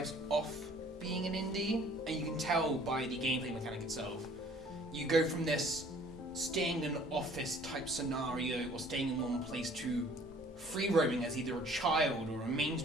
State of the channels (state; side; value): normal; both; correlation 0.55